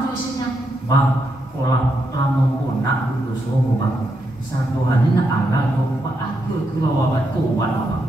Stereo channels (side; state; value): both; normal; correlation 0.82